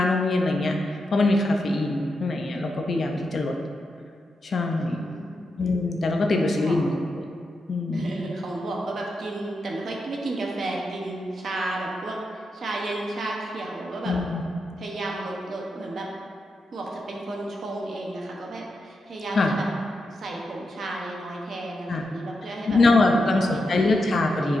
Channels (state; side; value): normal; both; correlation 0.86